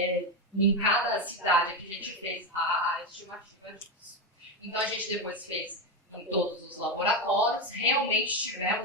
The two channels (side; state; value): both; normal; correlation 0.12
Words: em cada cidade que a gente fez a estimativa disso. Então, a gente depois fez em todos os laboratórios, realmente